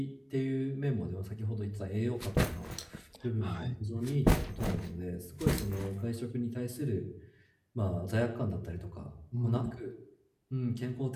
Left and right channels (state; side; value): identical; both; correlation 1.00